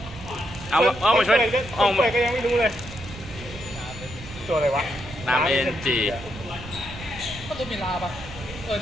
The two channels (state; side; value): noise; right; rumble, 14 dB below the sound